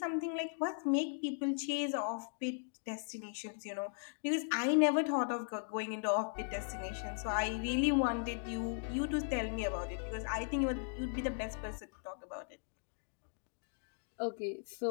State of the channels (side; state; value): right; silent; digital silence